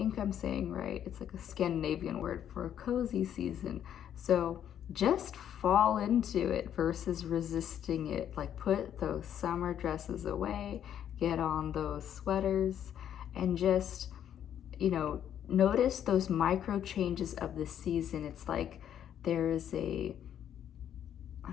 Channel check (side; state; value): right; quieter; 9.9 dB